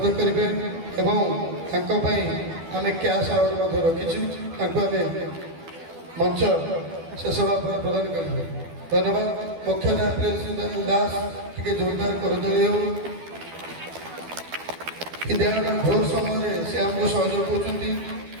କରିବେ ଏବଂ ତାଙ୍କ ପାଇଁ ଆମେ କ୍ୟାସ୍ ଆୱାର୍ଡ଼ ମଧ୍ୟ ରଖିଛୁ। ତାଙ୍କୁ ଆମେ ମଞ୍ଚ ଶେଷ ଭାବରେ ପ୍ରଦାନ କରିବେ। ଧନ୍ୟବାଦ। ମୁଖ୍ୟ ନ୍ୟାୟପାଳିକା ଦାସ ଟିକେ ଜୋରଦାର କରତାଳି ହେଉ। ବିଦ୍ୟାଳୟର ଭୋର ସମୟରେ ସେ ଆମକୁ ସହଯୋଗ କରୁଛନ୍ତି।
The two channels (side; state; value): left; late; 12 ms